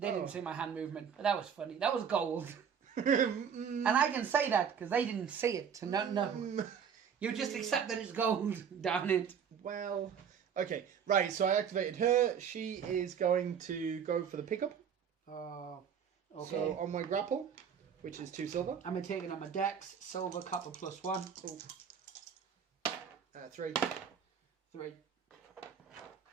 didn't see my hand movement, but that was funny. That was gold. And I can say that because they didn't see it. So no. You just accept that it's gold. Darn it. Well, okay. Right, so I activated her. She is going to go for the pickup. Oh, okay. So on my grapple, which is 2 silver. I'm going to take it on my dex. Silver, copper +1. Oh. 3. 3.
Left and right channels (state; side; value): quieter; left; 7.5 dB